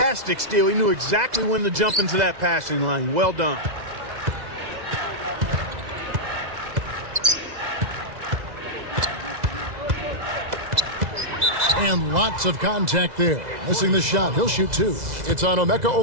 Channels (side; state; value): left; late; 2.0 ms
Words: steal. He knew exactly when to jump into that passing lane. Well done. And lots of contact there. Missing the shot. He'll shoot 2. It's on Emeka